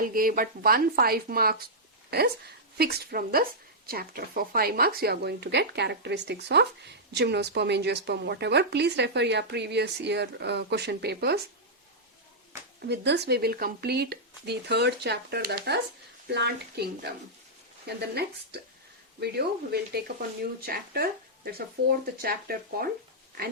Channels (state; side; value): normal; both; correlation -0.09